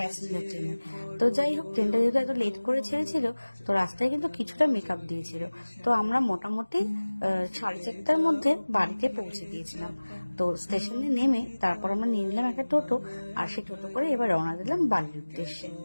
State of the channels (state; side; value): inverted; both; correlation -1.00